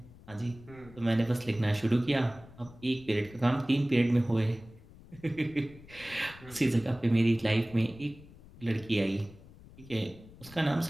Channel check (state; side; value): noise; left; rumble, 21 dB below the sound